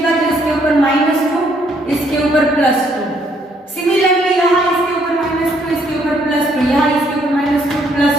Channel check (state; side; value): normal; both; correlation 0.68